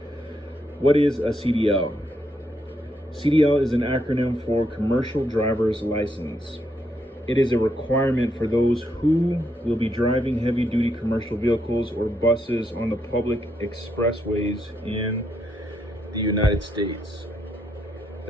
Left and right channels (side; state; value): both; normal; correlation 0.78